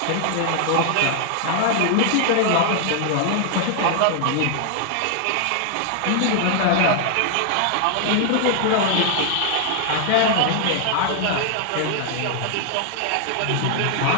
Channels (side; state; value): both; different; correlation 0.00